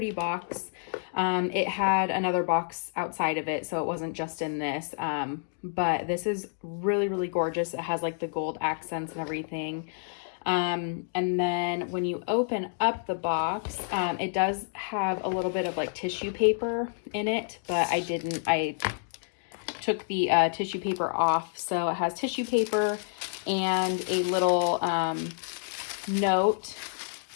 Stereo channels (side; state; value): right; silent; digital silence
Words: box. It had another box outside of it, so it wasn't just in this. But this is really, really gorgeous. It has like the gold accents and everything. And then when you open up the box, it does have a little bit of like tissue paper in it, but I took the tissue paper off. So it has tissue paper and a little note